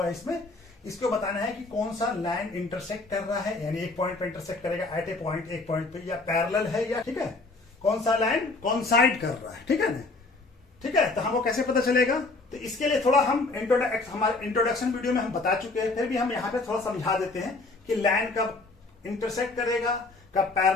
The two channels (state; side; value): quieter; right; 3.4 dB